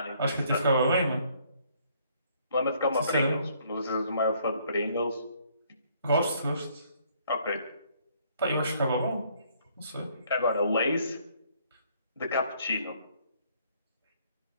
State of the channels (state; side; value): inverted; both; correlation -0.65